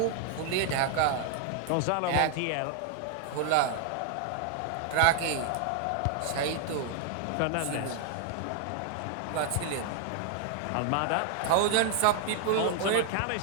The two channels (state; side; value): different; both; correlation 0.00